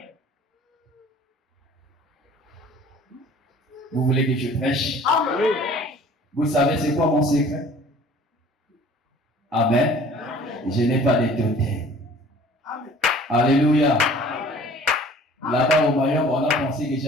Vous voulez que je prêche? Amen. Vous savez c'est quoi mon secret? Amen. Amen. Je n'ai pas de totem. Alléluia. Là-bas au Mayon, on a pensé que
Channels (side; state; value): both; normal; correlation 0.50